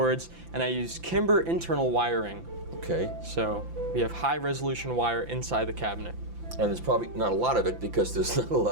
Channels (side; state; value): left; late; 5.9 ms